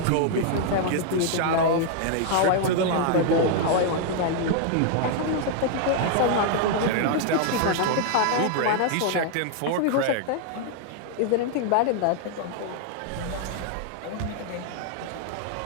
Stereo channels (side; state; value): both; different; correlation 0.00